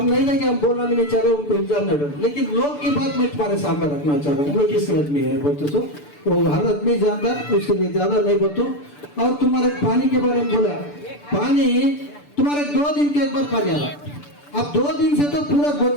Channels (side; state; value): right; late; 6.8 ms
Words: नहीं देंगे, हम बोलना भी नहीं चाह रहे, उनको इल्जाम नहीं डाल। लेकिन लोग की बात मैं तुम्हारे सामने रखना चाह रहा हूँ। मैं किस आदमी है बोलते सो, वो हर आदमी जानता, उसके लिए ज्यादा नहीं बोलता। और तुम्हारे पानी के बारे में बोला, पानी तुम्हारे 2 दिन के एक बार पानी आ रहा। अब 2 दिन से तो पूरा